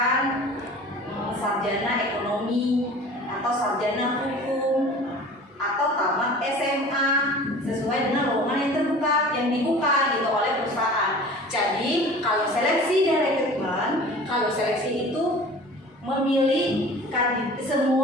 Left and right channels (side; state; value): both; normal; correlation 0.42